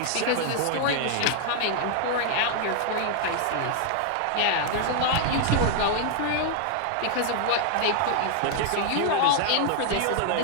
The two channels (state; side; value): different; both; correlation 0.00